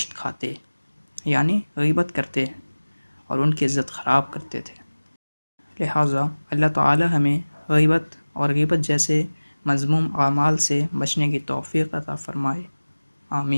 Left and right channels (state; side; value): inverted; both; correlation -1.00